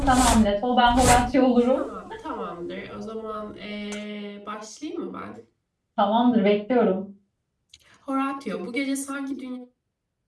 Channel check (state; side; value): identical; both; correlation 1.00